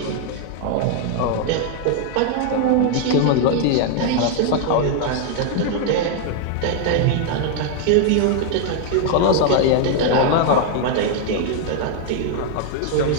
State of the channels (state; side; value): different; both; correlation 0.00